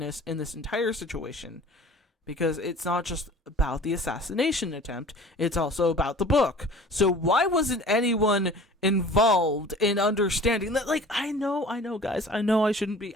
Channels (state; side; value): normal; both; correlation 0.45